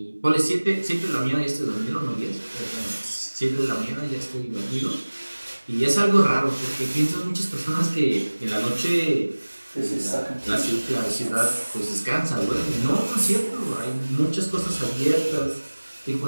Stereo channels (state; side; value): inverted; both; correlation -1.00